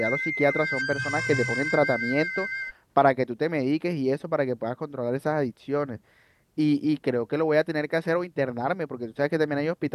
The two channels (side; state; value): both; identical; correlation 1.00